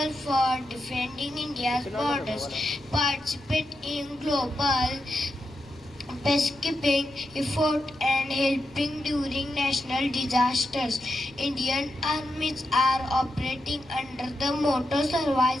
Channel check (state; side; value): noise; left; rumble, 26 dB below the sound